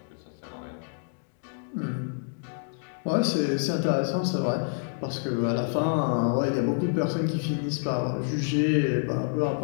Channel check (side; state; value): right; silent; digital silence